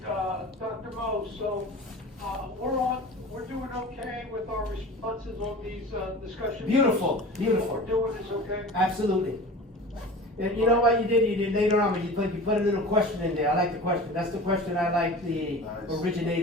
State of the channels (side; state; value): both; normal; correlation 0.36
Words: Dr. Mo, so, we're doing okay with our responses on these, discussions? Beautiful, What beautiful. we're doing is okay? Absolutely. And you know what you did later on, when you put a little question in there. I like the question. That's the question I like the Nice.